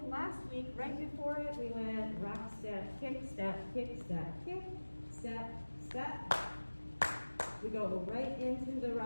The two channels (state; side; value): inverted; both; correlation -1.00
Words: last week, right before it, we went rock step, kick step, kick step, kick step, step. We go right into the